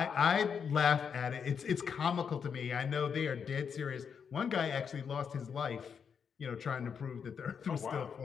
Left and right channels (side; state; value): right; quieter; 6.8 dB